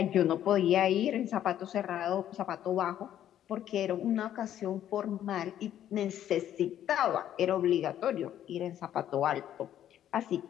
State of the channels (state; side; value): quieter; right; 11.1 dB